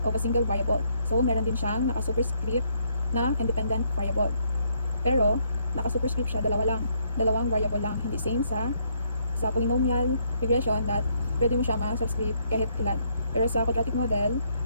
of a single variable. So meron din siyang naka-superscript na independent variable. Pero naka-superscript siya dalawang variable lang, hindi same sa polynomial regression that pwede mo siya ma-subscript kahit ilan. Pero sa quadratic model,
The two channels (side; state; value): both; inverted; correlation -0.72